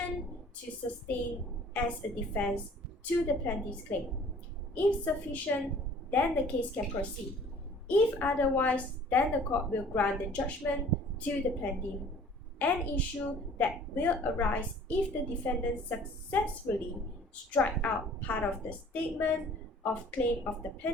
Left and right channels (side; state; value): both; normal; correlation 0.51